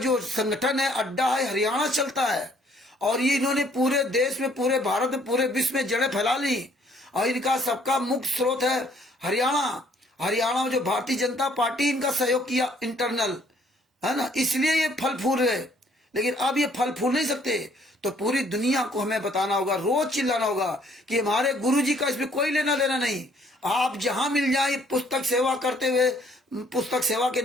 संगठन है, अड्डा है, हरियाणा चलता है, और ये इन्होंने पूरे देश में, पूरे भारत में, पूरे विश्व में जड़ें फैला ली। और इनका सबका मुख्य स्रोत है हरियाणा। हरियाणा में जो भारतीय जनता पार्टी इनका सहयोग किया इंटरनल, है ना, इसलिए ये फल फूल रहे। लेकिन अब ये फल फूल नहीं सकते। तो पूरी दुनिया को हमें बताना होगा, रोज चिल्लाना होगा कि हमारे गुरुजी का इसमें कोई लेना देना नहीं। आप जहां मिल जाए पुस्तक सेवा करते हुए, पुस्तक सेवा के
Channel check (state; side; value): normal; both; correlation 0.62